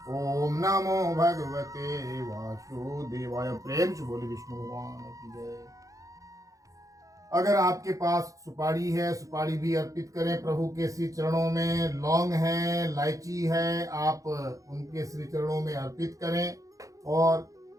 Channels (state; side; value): late; left; 0.16 ms